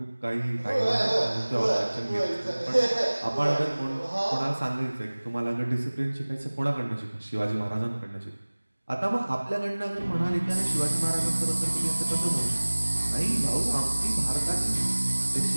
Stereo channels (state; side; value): inverted; both; correlation -1.00